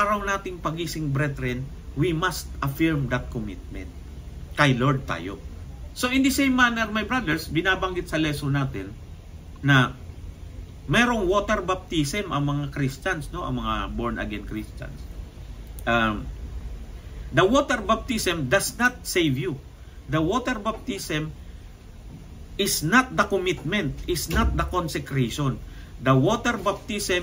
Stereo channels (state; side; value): identical; both; correlation 1.00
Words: nating pagising, brethren, we must affirm that commitment. Kay Lord tayo. So in the same manner, my brothers, binabanggit sa lesson natin na merong water baptism ang mga Christians, no? Ang mga born-again Christians. The water baptism does not save you. The water baptism is not the commitment, is not the consecration. The water